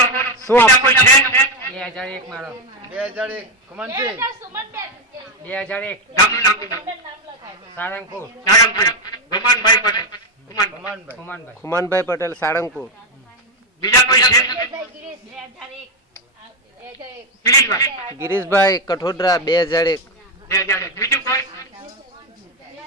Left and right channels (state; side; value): normal; both; correlation 0.09